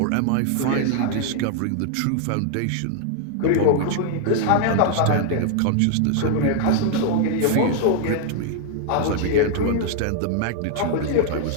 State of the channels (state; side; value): different; both; correlation 0.00